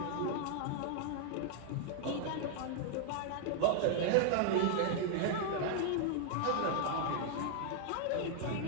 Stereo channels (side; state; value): both; different; correlation 0.00